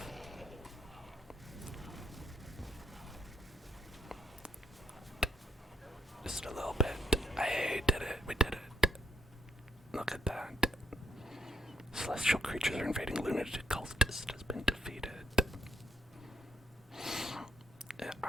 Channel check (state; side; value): normal; both; correlation 0.75